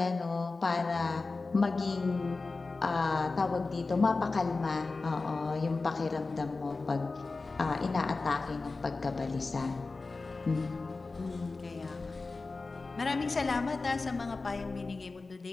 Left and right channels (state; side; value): quieter; right; 3.7 dB